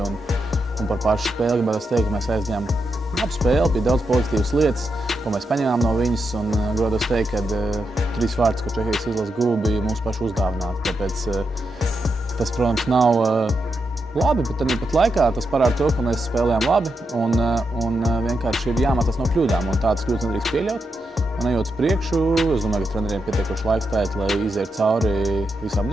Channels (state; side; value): normal; both; correlation 0.85